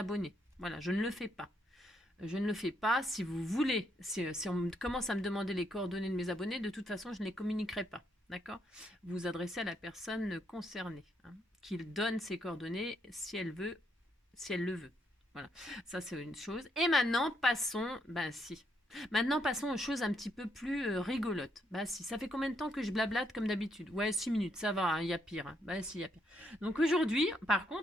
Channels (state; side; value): normal; both; correlation 0.75